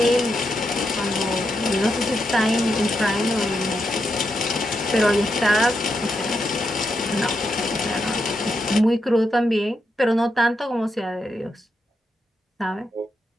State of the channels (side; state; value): both; normal; correlation 0.83